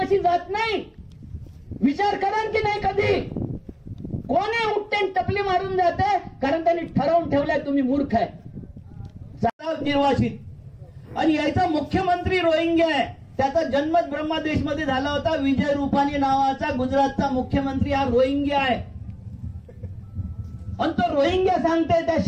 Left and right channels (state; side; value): identical; both; correlation 1.00